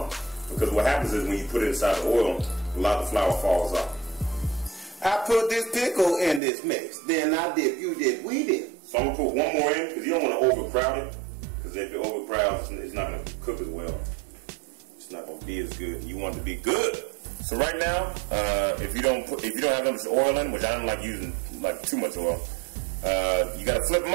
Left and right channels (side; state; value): left; drops out; at 6.4 s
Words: on. Because what happens is when you put it inside the oil, a lot of the flour falls off. I put this pickle in this mix. Then I dip, you dip, we dip. So I'm gonna put one more in because you don't want to overcrowd it. Because if it overcrowds, it's not gonna cook as well. It's not gonna be as good. You want it to be good. So right now, if you don't have much oil in, which I don't like using like too much oil, you gotta flip them